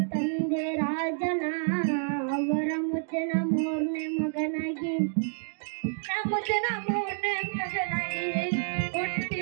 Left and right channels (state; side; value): silent; left; digital silence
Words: ತಂದೆ ರಾಜನ ಅವರ ಮುತ್ತಿನ ಮೂರನೇ ಮಗನಾಗಿ